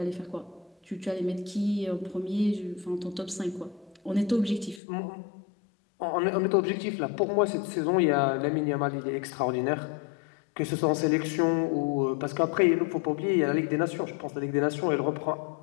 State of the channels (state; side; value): drops out; right; at 4.8 s